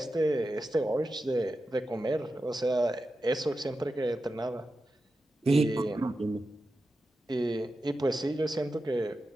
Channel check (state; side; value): normal; both; correlation 0.91